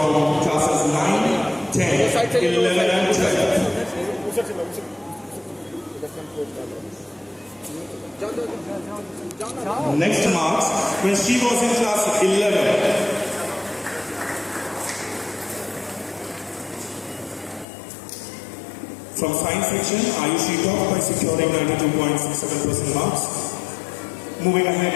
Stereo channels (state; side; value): drops out; right; at 17.7 s